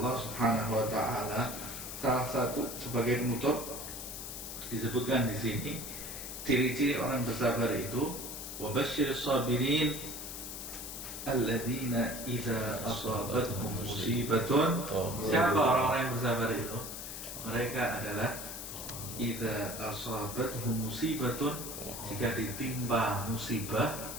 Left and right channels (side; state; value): left; noise; hiss, 8 dB below the sound